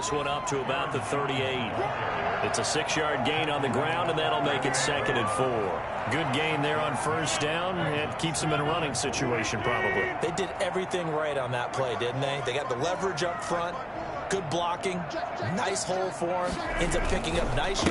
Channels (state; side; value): identical; both; correlation 1.00